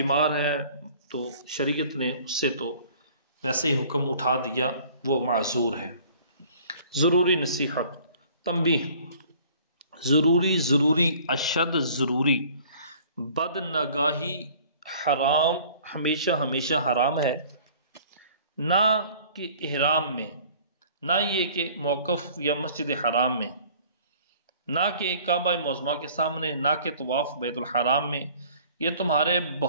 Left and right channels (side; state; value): both; inverted; correlation -0.52